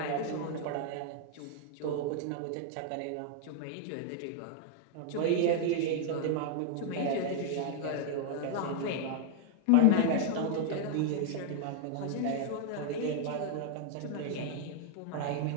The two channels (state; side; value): different; both; correlation 0.00